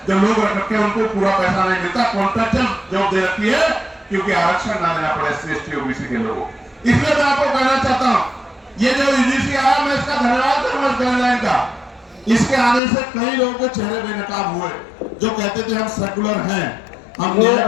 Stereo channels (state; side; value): drops out; right; at 12.8 s